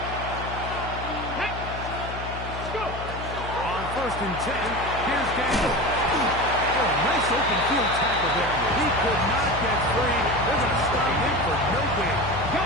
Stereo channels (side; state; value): left; noise; hum, 9 dB below the sound